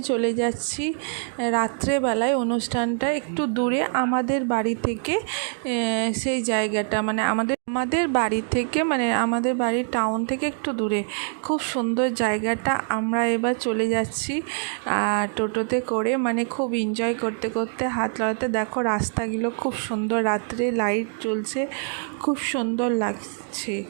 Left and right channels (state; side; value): silent; left; 62 dB below the other